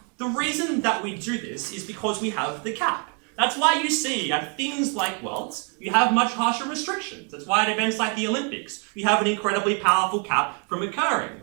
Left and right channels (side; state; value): left; quieter; 37.7 dB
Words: The reason that we do this is because we have the cap. That's why you see at things like Worlds, you have much harsher restrictions. That's why at events like the Olympics, you have an incredibly powerful cap from occurring.